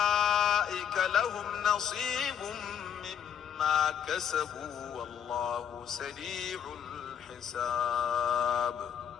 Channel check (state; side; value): quieter; right; 8.5 dB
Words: لهم نصيب مما كسبوا والله سريع الحساب